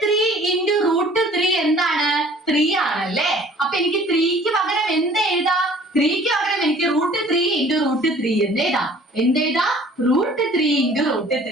3 into root 3 എന്താണ്? 3 ആണല്ലേ. അപ്പൊ എനിക്ക് 3ക്ക് പകരം എന്ത് എഴുതാം? 3ക്ക് പകരം എനിക്ക് root 3 into root 3 എന്ന് എഴുതാം. എന്ത് എഴുതാം? root 3 into root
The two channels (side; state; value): both; normal; correlation 0.52